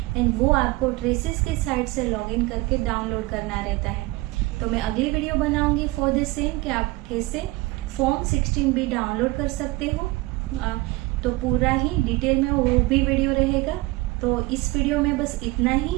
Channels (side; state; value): left; quieter; 21.3 dB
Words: एंड वो आपको ट्रेसिस की साइट से लॉगिन करके डाउनलोड करना रहता है। तो मैं अगली वीडियो बनाऊंगी फॉर द सेम कि आप कैसे फॉर्म 16B डाउनलोड कर सकते हो। तो पूरा ही डिटेल में वो भी वीडियो रहेगा। तो इस वीडियो में बस इतना ही।